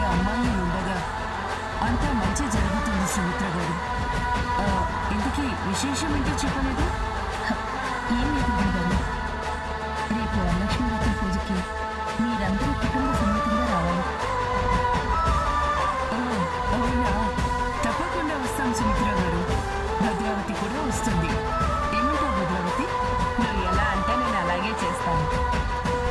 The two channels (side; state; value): both; identical; correlation 1.00